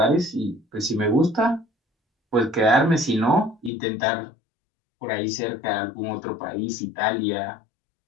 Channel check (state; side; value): drops out; right; at 3.7 s